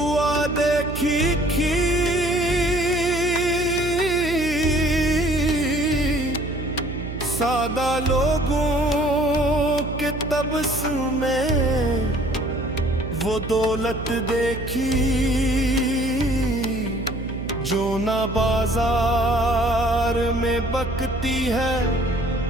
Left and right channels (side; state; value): right; noise; hum, 8 dB below the sound